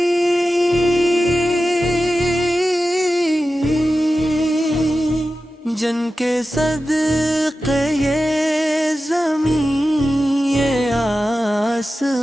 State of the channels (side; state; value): both; normal; correlation 0.93